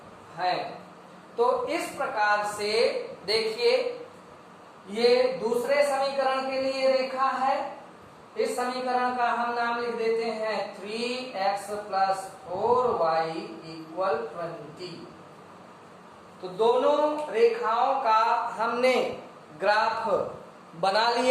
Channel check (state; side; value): identical; both; correlation 1.00